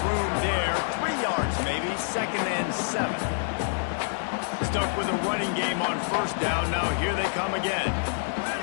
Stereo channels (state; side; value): silent; right; digital silence